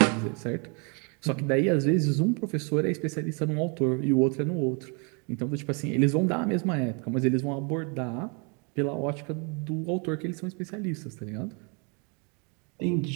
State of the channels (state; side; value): quieter; left; 34.6 dB